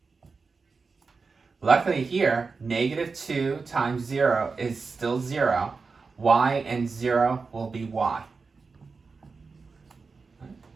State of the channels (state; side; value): quieter; left; 4.6 dB